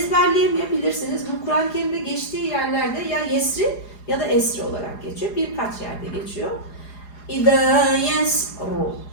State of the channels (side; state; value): right; late; 4.8 ms